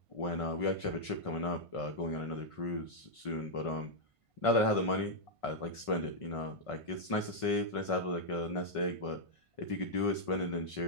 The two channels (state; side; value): late; right; 1.5 ms